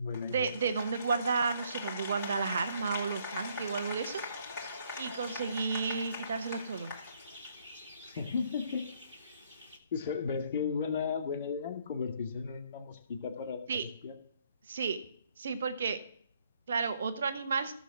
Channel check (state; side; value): inverted; both; correlation -0.68